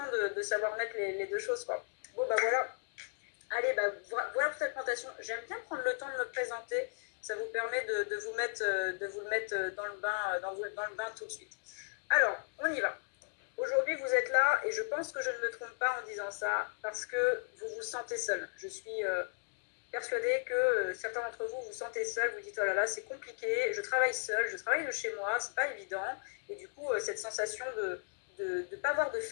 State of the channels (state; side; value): silent; right; 54 dB below the other